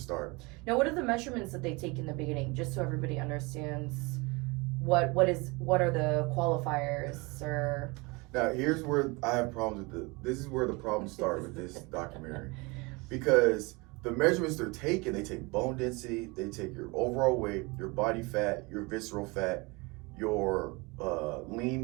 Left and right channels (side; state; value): left; quieter; 26.4 dB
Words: Now, what are the measurements that they take in the beginning, just so everybody understands what are the qualifiers or? Now here's where I have problems with this is where the problems start with this documentary, because the measurements they're taking, they take bone density, they take your overall weight, your body fat, your visceral fat, your